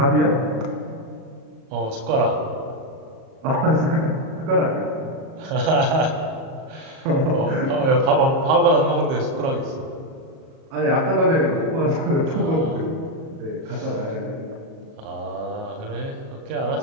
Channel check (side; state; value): left; late; 37 ms